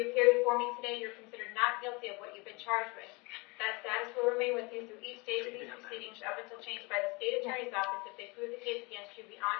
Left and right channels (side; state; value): right; quieter; 27.2 dB